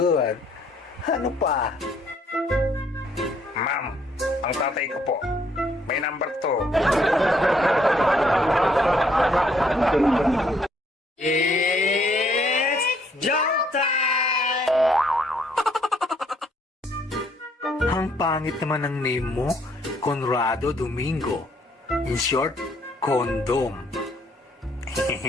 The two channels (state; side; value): normal; both; correlation 0.67